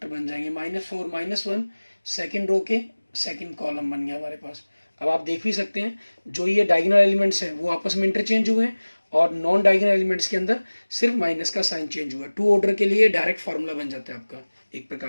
बन जाएंगे, -4 -1, सेकेंड रो के सेकेंड कॉलम बन गया हमारे पास। अब आप देख भी सकते हैं जो ये डायगोनल एलिमेंट्स हैं वो आपस में इंटरचेंज हुए हैं और नॉन डायगोनल एलिमेंट्स के अंदर सिर्फ माइनस का साइन चेंज हुआ है। 2 ऑर्डर के लिए डायरेक्ट फार्मूला बन जाता है आपका एक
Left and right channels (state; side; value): inverted; both; correlation -1.00